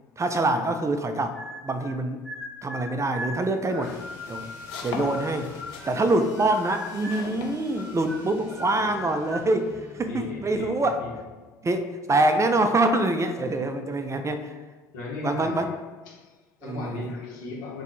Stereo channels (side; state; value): both; normal; correlation 0.61